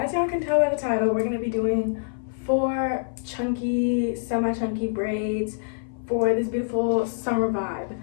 y'all can tell by the title, we're going to be doing 4 chunky, semi-chunky braids for this beautiful summer vibe.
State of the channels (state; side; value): silent; right; 56 dB below the other